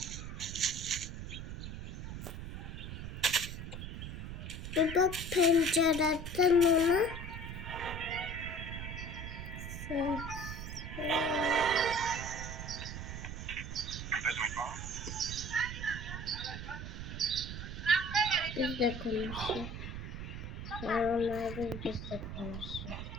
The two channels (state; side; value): noise; right; rumble, 7 dB below the sound